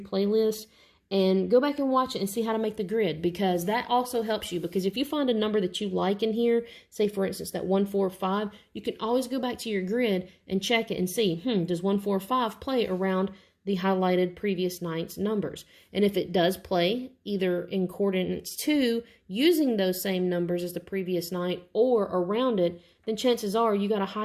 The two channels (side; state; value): both; identical; correlation 1.00